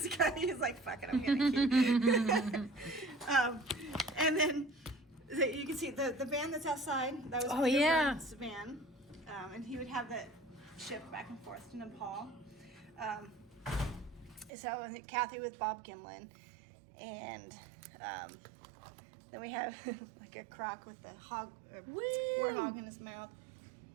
like, fuck it, I'm getting a key. And then you can see the van that's outside. That was Peter Byrne's van. And he would have that shipped back and forth to Nepal. So Kathy with Bob Gimlin. And then we have like a croc with the hog, or warthog in his mouth.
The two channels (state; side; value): drops out; left; at 14.5 s